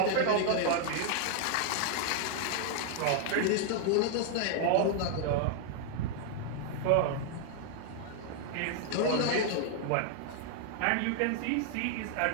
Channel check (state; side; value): different; both; correlation 0.00